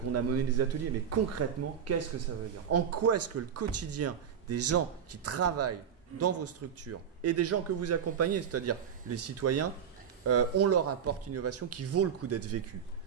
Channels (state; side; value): quieter; left; 8.0 dB